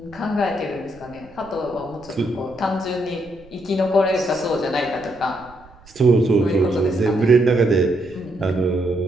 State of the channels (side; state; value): right; noise; rumble, 25 dB below the sound